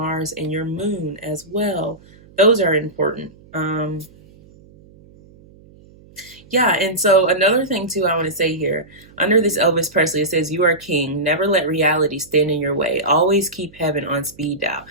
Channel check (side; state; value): right; noise; hum, 25 dB below the sound